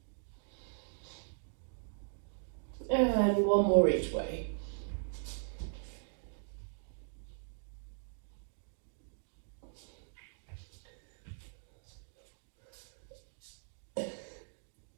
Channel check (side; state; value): left; silent; digital silence